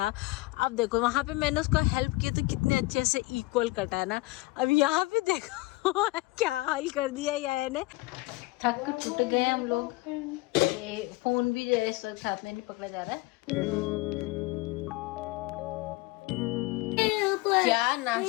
अब देखो वहाँ पे मैंने उसको हेल्प किया तो कितने अच्छे से इक्वल कटा है ना। अब यहाँ पे देखो क्या हाल कर दिया यार ने। थक टूट गए हम लोग। फोन भी जो है इस वक्त हाथ में नहीं पकड़ा जा रहा है। क्या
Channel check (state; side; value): quieter; right; 21.4 dB